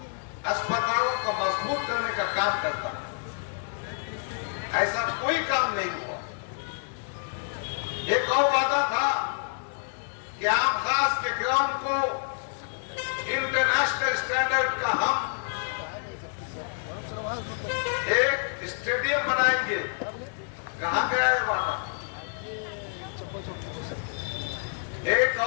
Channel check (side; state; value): right; silent; digital silence